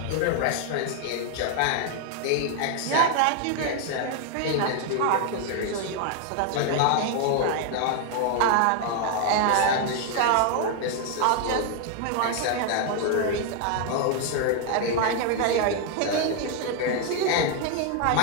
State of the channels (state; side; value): different; both; correlation 0.00